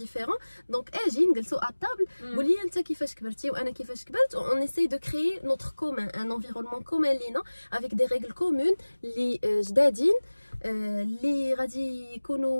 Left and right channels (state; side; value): inverted; both; correlation -1.00